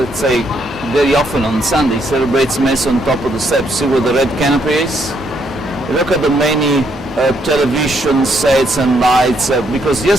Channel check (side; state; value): both; normal; correlation 0.73